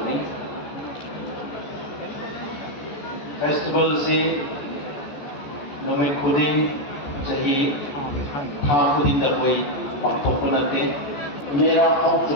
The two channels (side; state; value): right; late; 14 ms